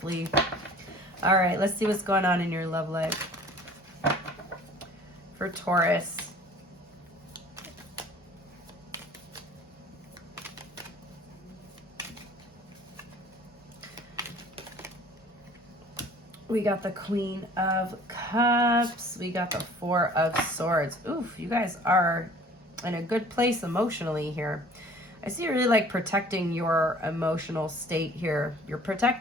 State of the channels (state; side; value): normal; both; correlation 0.49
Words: All right, let's see what's going on in your love life for Taurus. We got the Queen of Cups. We got the Four of Swords. Oof, you guys are in a good place emotionally here. I see you really like protecting your emotional state here. You're